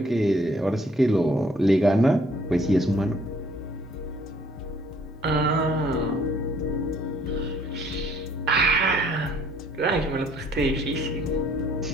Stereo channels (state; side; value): normal; both; correlation 0.61